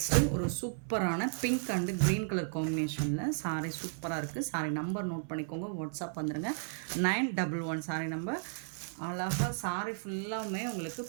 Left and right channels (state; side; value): silent; left; 55 dB below the other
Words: ஒரு சூப்பரான பிங்க் அண்டு க்ரீன் கலர் காம்பினேஷனில் சாரி சூப்பராக இருக்குது. சாரி நம்பர் நோட் பண்ணிக்கோங்க, வாட்ஸ்அப் வந்துடுங்க. 911 சாரி நம்பர். அழகாக சாரி ஃபுல்லாமே உங்களுக்கு